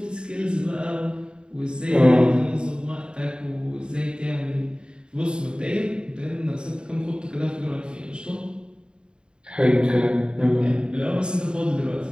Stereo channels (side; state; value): left; late; 0.050 ms